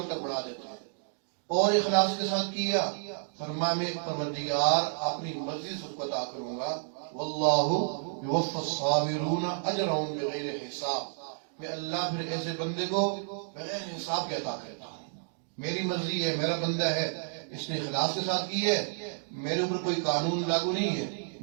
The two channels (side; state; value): left; silent; digital silence